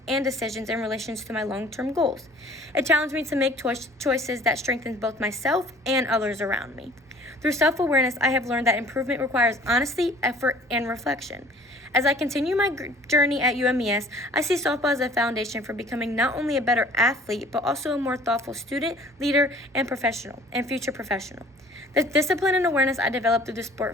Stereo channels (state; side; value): normal; both; correlation 0.51